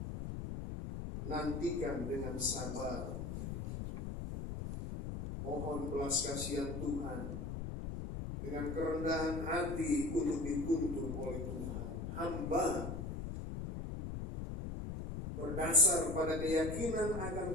Nantikan dengan sabar. Mohon belas kasihan Tuhan dengan kerendahan hati untuk dituntun oleh Tuhan. Hamba berdasar pada keyakinan akan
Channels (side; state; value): left; noise; rumble, 5 dB below the sound